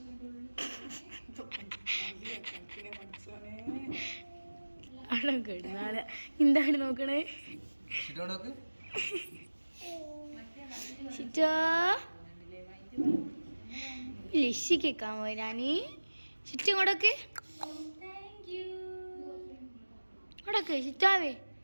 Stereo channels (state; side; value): inverted; both; correlation -1.00